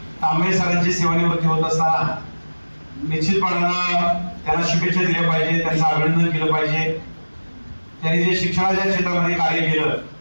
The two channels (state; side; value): inverted; both; correlation -1.00